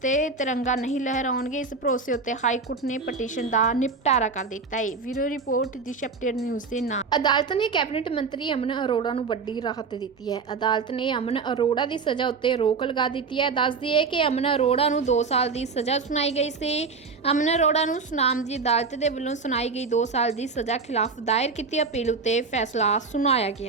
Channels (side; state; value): left; quieter; 4.7 dB